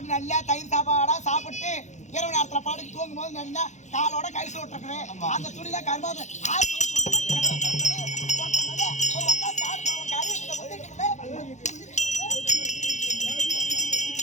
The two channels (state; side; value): late; right; 0.34 ms